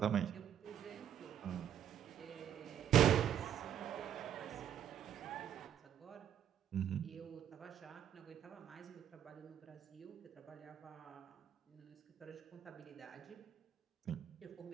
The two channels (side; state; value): left; quieter; 10.0 dB